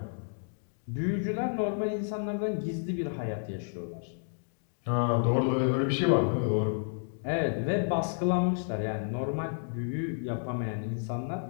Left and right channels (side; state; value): right; silent; digital silence